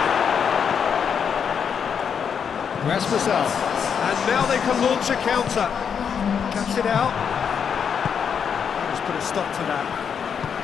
Rasmussen. And now they can launch a counter. Cuts it out. Let's put a stop to that.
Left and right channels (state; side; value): quieter; right; 7.2 dB